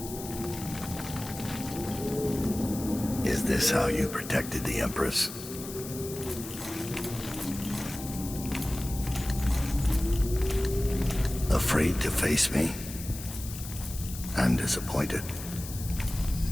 Is this how you protected the Empress? Afraid to face me? I'm disappointed.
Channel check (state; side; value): noise; left; hiss, 11 dB below the sound